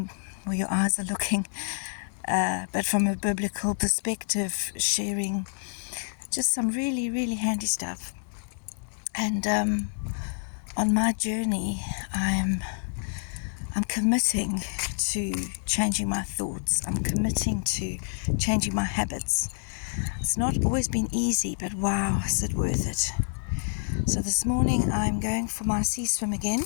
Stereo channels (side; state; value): right; silent; digital silence